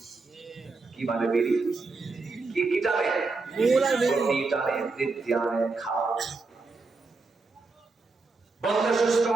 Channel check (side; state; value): left; quieter; 3.9 dB